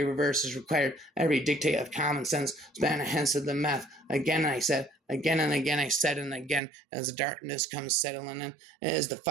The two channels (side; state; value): left; drops out; at 6.6 s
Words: reverse is required. Every dictate of common sense span hence of the meth. Again I said, again and again I said, and again, as the darkness comes settling in, it is the